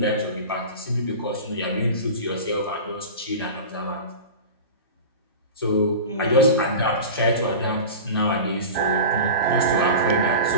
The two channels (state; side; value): inverted; both; correlation -0.31